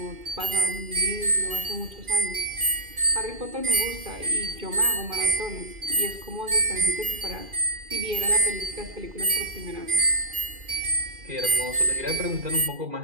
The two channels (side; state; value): left; late; 2.4 ms